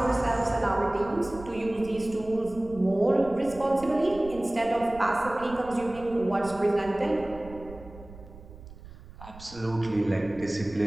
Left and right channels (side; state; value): right; noise; rumble, 17 dB below the sound